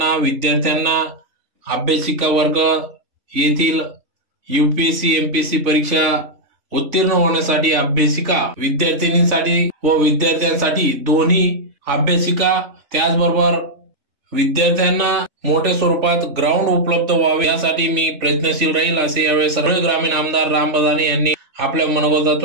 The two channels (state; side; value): late; left; 3.4 ms